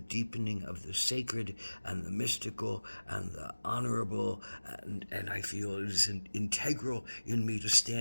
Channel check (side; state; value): both; inverted; correlation -1.00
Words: deepening of the sacred and the mystical and the honorable, and I feel it is integral in me to